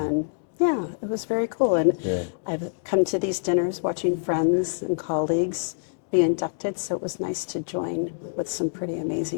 yeah, it was very cool. And I've come to these dinners watching friends and colleagues be inducted, so it was nice to join with some pretty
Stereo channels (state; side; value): silent; right; digital silence